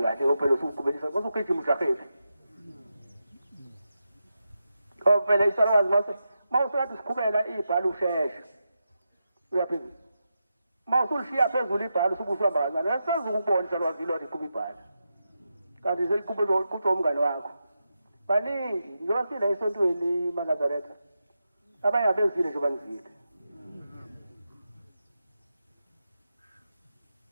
kahle ophela usuqhubelisa basugijima ushafefe phela isalwazi mawusathi siqhubela ibhala usheshe uyaphezulu mawusulishiya phezulu ibhala usukuhamba kancane asezukubona ukubona isalwazi lo liqhuba ibhala kanti seliqhubela kutsho umngane wakho baningi njengoba sila esontweni maNazaretha abanye abezile nje banizile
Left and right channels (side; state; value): both; inverted; correlation -0.88